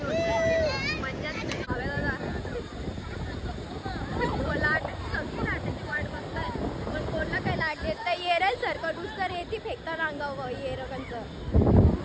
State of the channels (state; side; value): identical; both; correlation 1.00